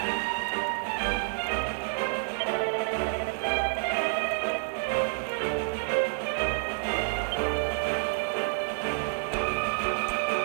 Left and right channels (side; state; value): left; silent; digital silence